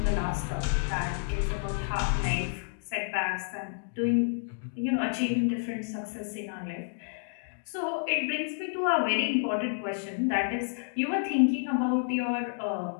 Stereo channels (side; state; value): right; silent; digital silence